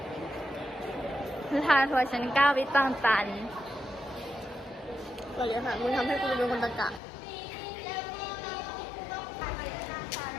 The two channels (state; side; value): drops out; right; at 7.0 s